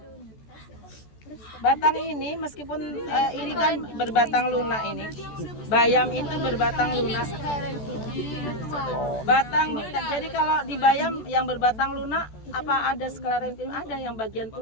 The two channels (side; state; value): right; late; 14 ms